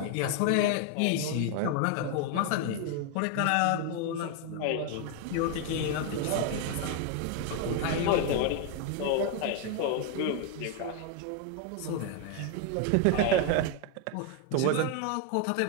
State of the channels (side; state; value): both; different; correlation 0.01